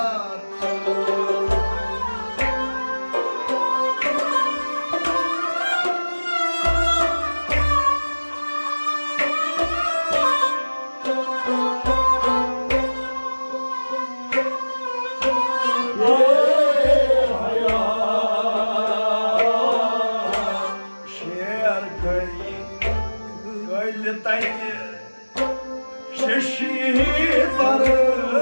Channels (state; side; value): inverted; both; correlation -1.00